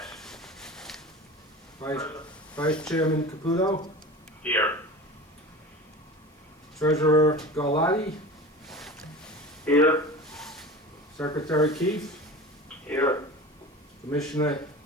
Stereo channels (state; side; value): normal; both; correlation 0.34